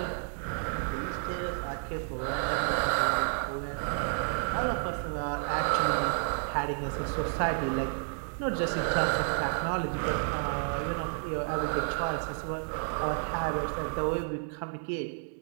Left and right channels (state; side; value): silent; left; digital silence